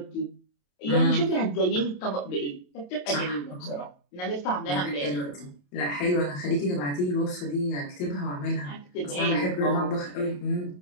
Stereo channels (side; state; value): right; late; 28 ms